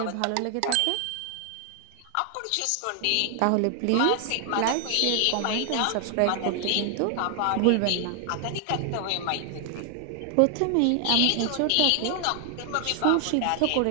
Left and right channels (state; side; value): different; both; correlation 0.00